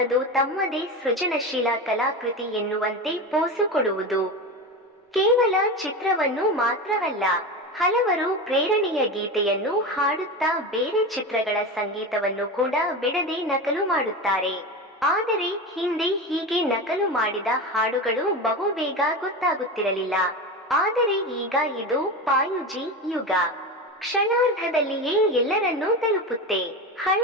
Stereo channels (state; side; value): normal; both; correlation 0.23